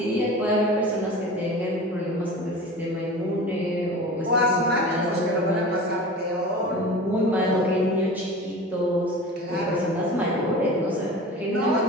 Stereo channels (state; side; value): normal; both; correlation 0.36